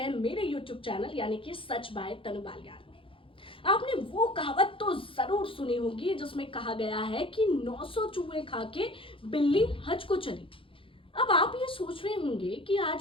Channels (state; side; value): late; right; 0.26 ms